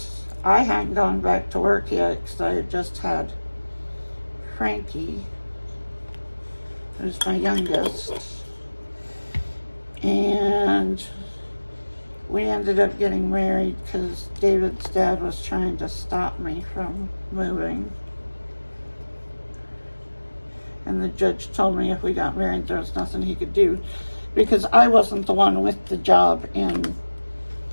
I hadn't gone back to work yet because I had just had Frankie. who's my youngest. And we ended up getting married because David's dad was trying to stop me from moving. And the judge told me if we got married, there was nothing he could do because I wasn't the one with the job in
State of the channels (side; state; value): both; inverted; correlation -1.00